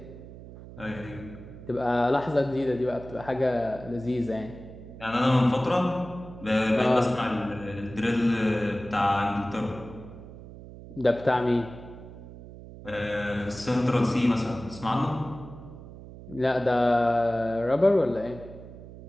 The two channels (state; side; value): noise; right; hum, 15 dB below the sound